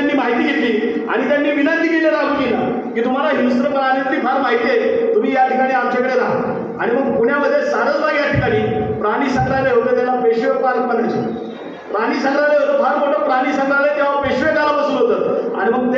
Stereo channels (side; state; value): both; identical; correlation 1.00